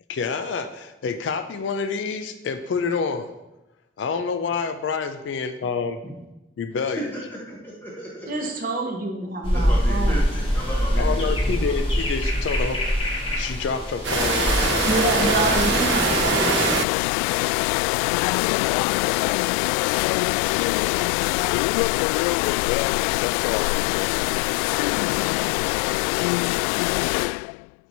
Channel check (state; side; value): drops out; right; at 16.9 s